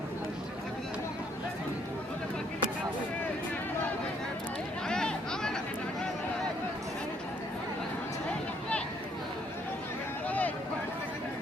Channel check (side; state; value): both; normal; correlation 0.68